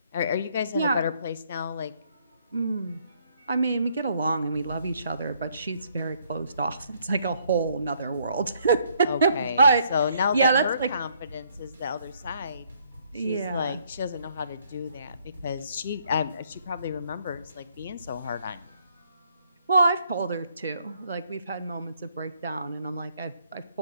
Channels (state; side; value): inverted; both; correlation -0.68